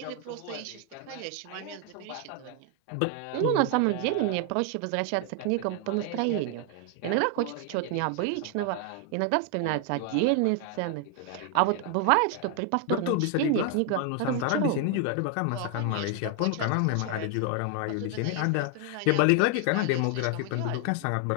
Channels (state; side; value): different; both; correlation 0.00